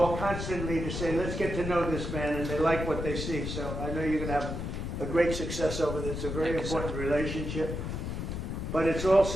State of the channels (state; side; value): noise; left; rumble, 4 dB below the sound